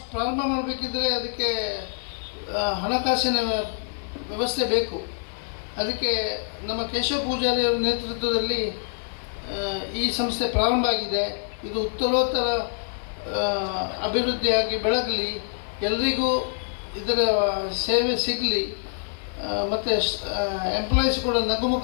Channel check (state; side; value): silent; right; digital silence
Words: ಪ್ರಾರಂಭ ಮಾಡಬೇಕಿದ್ರೆ ಅದಕ್ಕೆ ಹಣಕಾಸಿನ ವ್ಯವಸ್ಥೆ ಬೇಕು. ಅದಕ್ಕೆ ನಮ್ಮ ಕೇಶವ ಪೂಜಾರಿಯವರ ನೇತೃತ್ವದಲ್ಲಿ ಈ ಸಂಸ್ಥೆ ಪ್ರಾರಂಭ ಆಗಿದೆ. ಇದು ಉತ್ತರೋತ್ತರ ಅಭಿವೃದ್ಧಿಯಾಗಿ ಬೆಳಗಲಿ, ಎಲ್ರಿಗೂ ಇದರ ಸೇವೆ ಸಿಗಲಿ, ಮತ್ತು ಎಂಪ್ಲಾಯೀಸ್ ಕೂಡ